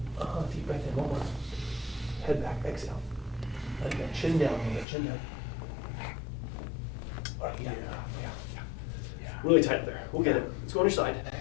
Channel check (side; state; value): right; drops out; at 4.9 s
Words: Deep breath in. One more. Head back. Exhale. Let it go. Chin down. Chin down. All right, yeah. Really tight up there. We'll get it. Let's go on your side.